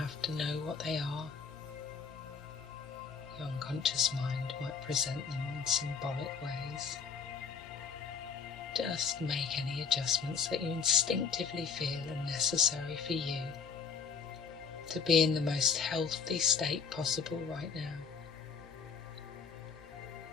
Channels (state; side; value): quieter; right; 5.9 dB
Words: to know what they are. Your unconscious mind might present them in symbolic ways. Just make any adjustments that you instinctively feel are necessary for you to be in the most healthy state possible right now.